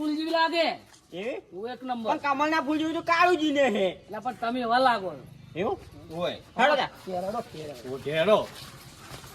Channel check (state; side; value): identical; both; correlation 1.00